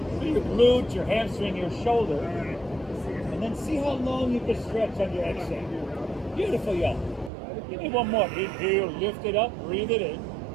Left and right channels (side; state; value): left; drops out; at 7.3 s